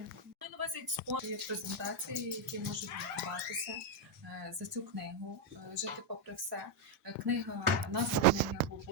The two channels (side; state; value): both; normal; correlation 0.01